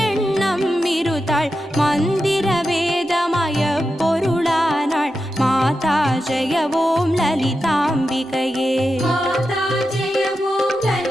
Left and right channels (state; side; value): normal; both; correlation 0.89